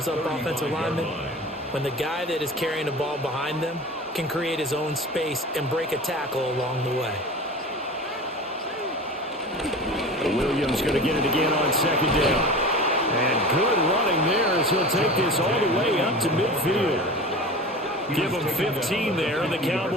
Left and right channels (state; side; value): normal; both; correlation 0.34